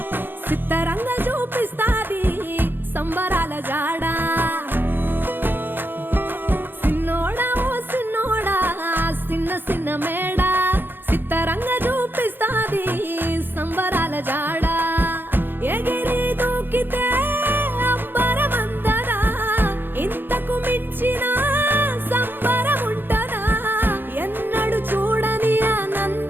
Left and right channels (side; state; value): left; late; 0.098 ms